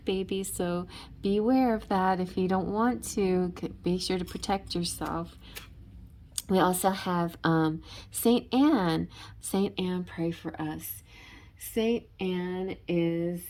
babies. So beware of that. If you don't want to, be sure to protect yourself. We also have Saint Anne. Saint Anne, pray for us. Saint Anne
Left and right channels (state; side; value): identical; both; correlation 1.00